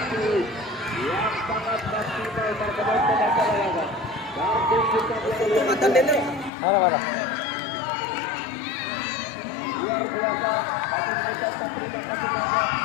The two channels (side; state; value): right; drops out; at 6.5 s